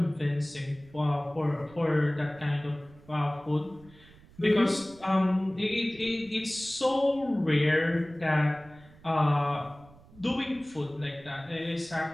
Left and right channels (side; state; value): right; noise; rumble, 24 dB below the sound